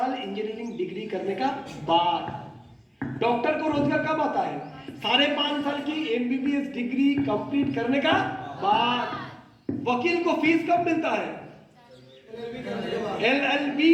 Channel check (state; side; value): identical; both; correlation 1.00